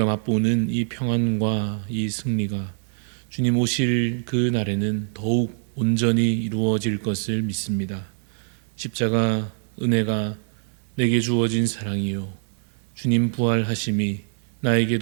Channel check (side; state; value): left; silent; digital silence